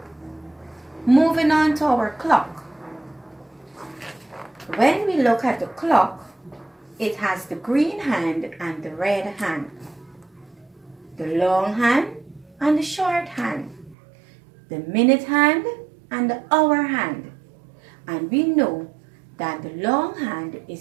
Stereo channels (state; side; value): drops out; left; at 14.0 s